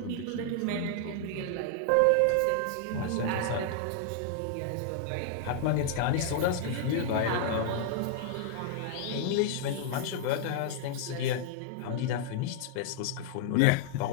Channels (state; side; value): different; both; correlation -0.01